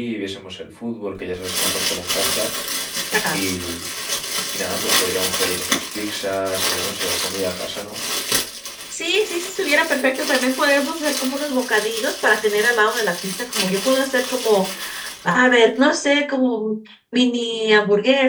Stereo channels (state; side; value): identical; both; correlation 1.00